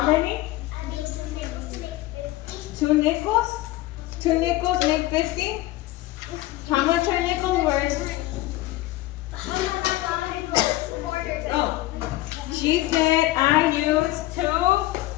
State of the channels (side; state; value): right; quieter; 17.2 dB